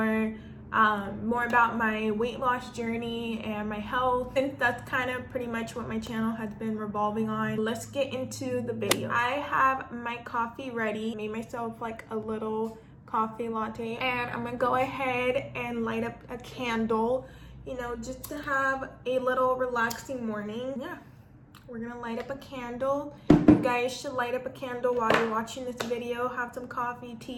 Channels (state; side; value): identical; both; correlation 1.00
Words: about my weight loss journey and my health, and that's kind of pretty much what my channel has been revolving on. Let's get into the video. I have my coffee ready. Made myself like a little coffee latte, and I'm gonna go ahead and light up a candle, you know, just to have a little relaxing morning. Yeah, we're gonna light up a candle. You guys should light up a candle while you're watching this video. Have some coffee,